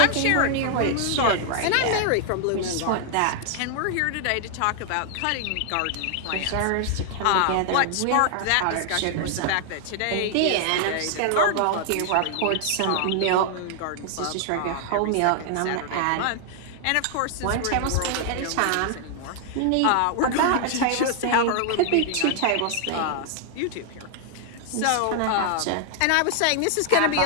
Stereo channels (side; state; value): both; different; correlation 0.00